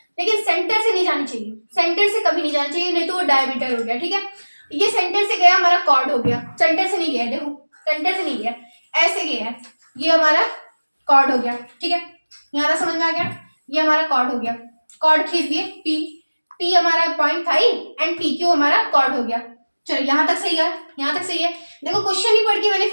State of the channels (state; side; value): inverted; both; correlation -1.00